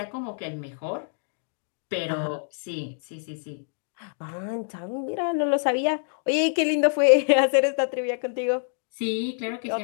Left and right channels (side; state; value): right; silent; digital silence